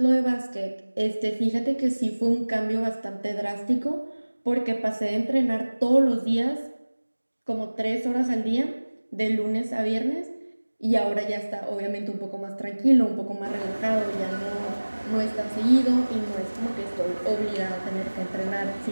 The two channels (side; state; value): both; inverted; correlation -1.00